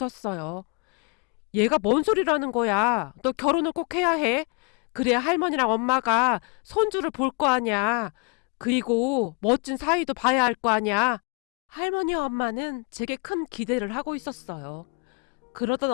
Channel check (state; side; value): quieter; right; 34.8 dB